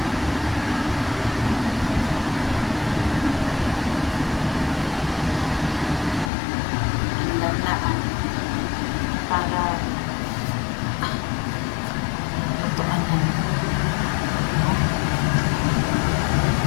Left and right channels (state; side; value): drops out; right; at 6.3 s